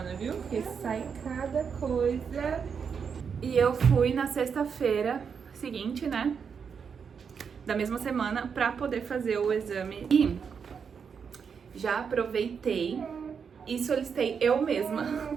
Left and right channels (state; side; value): quieter; left; 6.5 dB